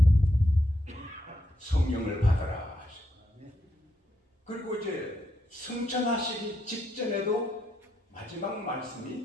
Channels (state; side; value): normal; both; correlation 0.80